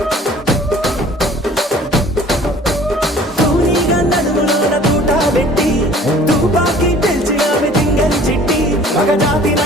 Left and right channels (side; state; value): both; normal; correlation 0.50